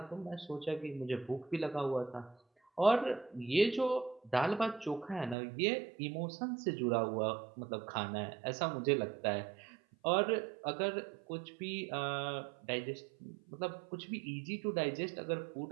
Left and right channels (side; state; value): left; drops out; at 5.4 s